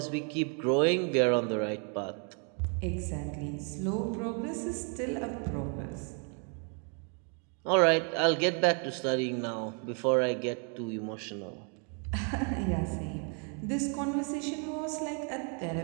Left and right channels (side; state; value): left; quieter; 39.3 dB